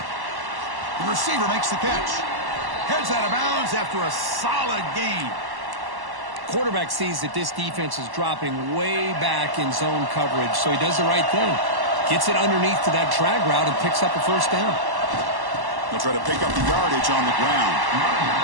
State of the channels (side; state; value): left; late; 1.1 ms